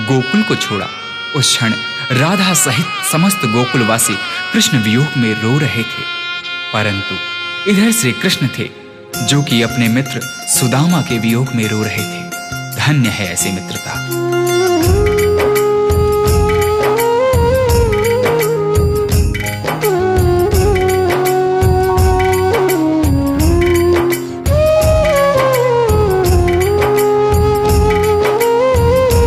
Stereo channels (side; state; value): both; identical; correlation 1.00